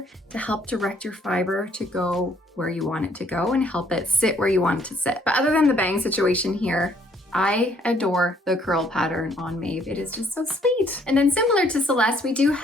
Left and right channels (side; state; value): both; normal; correlation 0.65